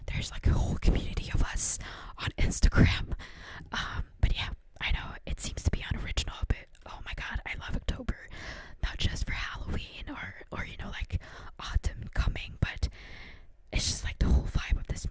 There's like a whole community of us on Instagram. But yeah, I know it seems to be unoriginal, but oh my god, I love October. Not just for Halloween or like autumn coming, but it's just like the whole vibe of this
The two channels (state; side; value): identical; both; correlation 1.00